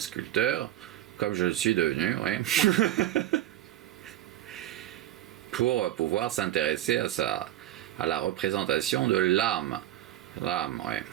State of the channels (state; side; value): quieter; left; 13.2 dB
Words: comme je le suis devenu, oui. Pour pouvoir s'intéresser à la représentation de l'âme. L'âme, oui.